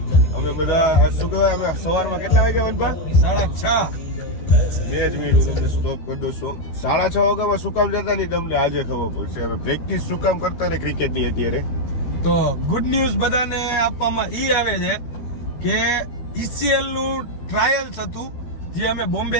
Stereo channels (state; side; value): late; right; 13 ms